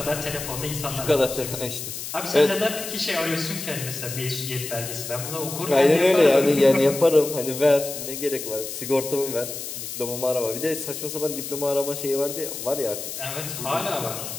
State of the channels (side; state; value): left; noise; hiss, 7 dB below the sound